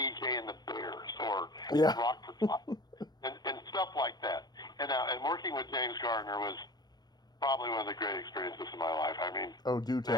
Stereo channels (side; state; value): right; late; 0.19 ms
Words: and the Bears, or Rockford Five, and stuff like that. And working with James Garner was probably one of the great experiences of my life. I mean, do